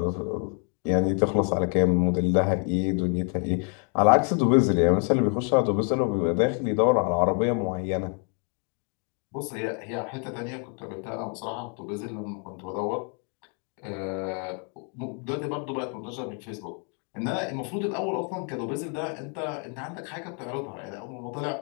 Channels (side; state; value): right; quieter; 39.7 dB